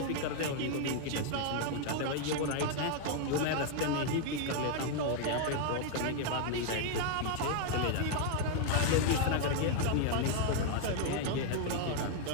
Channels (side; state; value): both; different; correlation 0.00